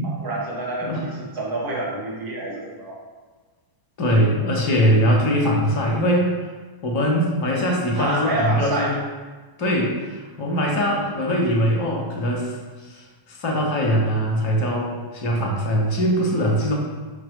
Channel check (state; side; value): late; left; 1.0 ms